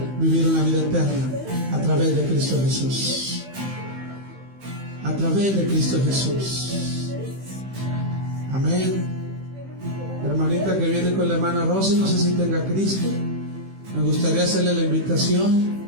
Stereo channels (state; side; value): late; left; 15 ms